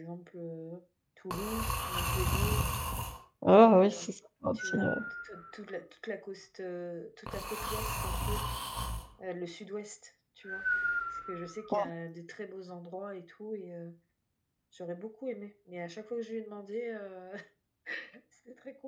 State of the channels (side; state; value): both; identical; correlation 1.00